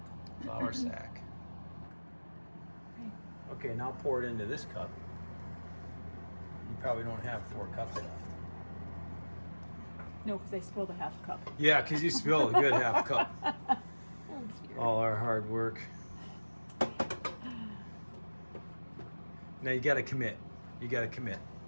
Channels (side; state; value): both; inverted; correlation -1.00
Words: flour sack. Okay, now pour it into this cup. You probably don't have 4 cups left. No, because I spilled a half cup. Yeah, because you spilled a good half cup. Oh, dear. All our hard work. Now you got to commit. You got to commit.